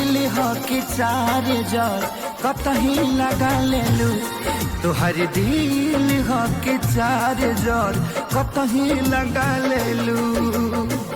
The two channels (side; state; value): both; identical; correlation 1.00